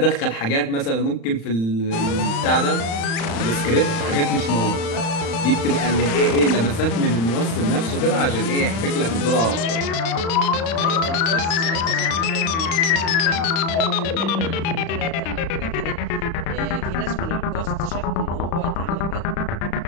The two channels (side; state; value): right; late; 36 ms